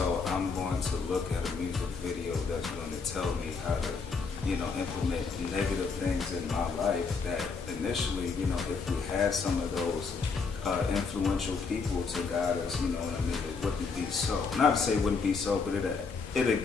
I'm going to look at a music video that's going to tell me how to, implement negative things in my life that initially, if we had some of those influential people to guide us, it wouldn't be so. Not to say it wouldn't be so, but it'd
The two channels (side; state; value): right; quieter; 4.9 dB